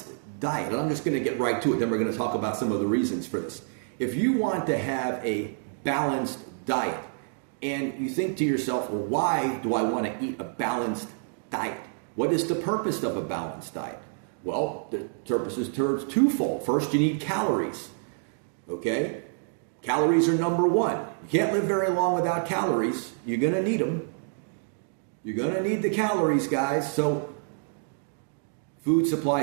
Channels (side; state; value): left; silent; digital silence